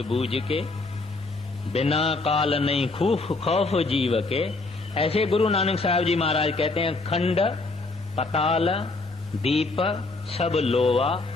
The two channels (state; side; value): quieter; right; 3.4 dB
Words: के, बिना काल नहीं खौफ जीव के। ऐसे गुरु नानक साहब जी महाराज कहते हैं खंड पताल दीप सब लोवा,